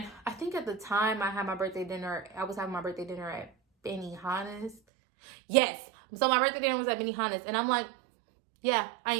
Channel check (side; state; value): left; drops out; at 4.8 s